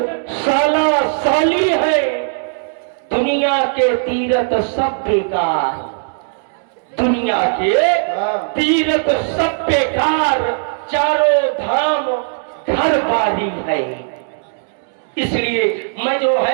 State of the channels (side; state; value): left; silent; digital silence